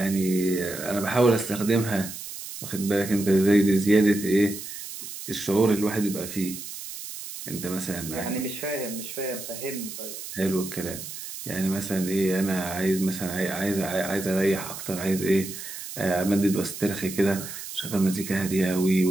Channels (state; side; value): noise; right; hiss, 10 dB below the sound